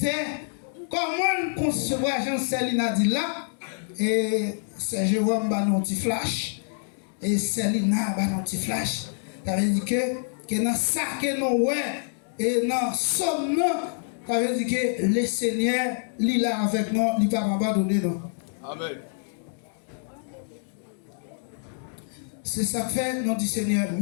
comment concevoir Jean-Céline a dit là, et c'est Jérôme Banon petit flash, et Célina Banon petit flash, ça veut dire que dans ça que nous ouais, et dans somme, ça veut dire que le Seigneur, il est là avec nous, il ne va pas abandonner nous. Amen. C'est ça que fait, nous dit Seigneur,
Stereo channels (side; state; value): right; silent; digital silence